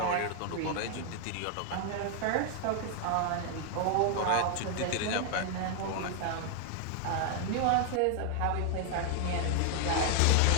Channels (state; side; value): different; both; correlation 0.00